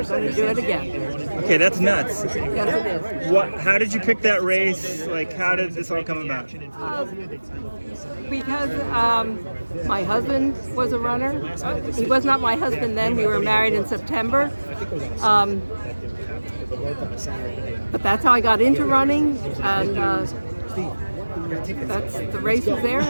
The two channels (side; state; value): both; inverted; correlation -1.00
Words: going to do it again. Okay, that's nuts. Yes, it is. How did you pick that race? Like, how did this all come about? Because my husband was a runner. He was not my husband then. We were married in September. But that's how I got into running, and the race was there,